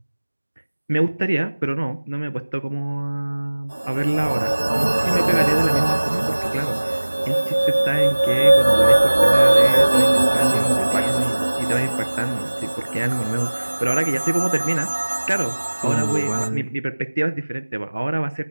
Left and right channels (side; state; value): both; inverted; correlation -1.00